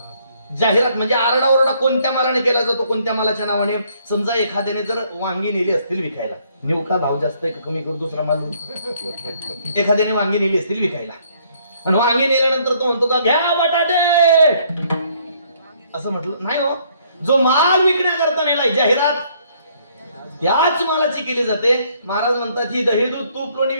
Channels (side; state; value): both; inverted; correlation -0.66